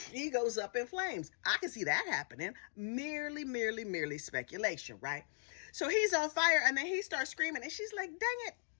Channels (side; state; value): right; silent; digital silence